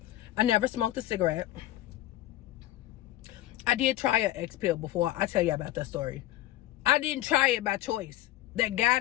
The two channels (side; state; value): right; quieter; 15.0 dB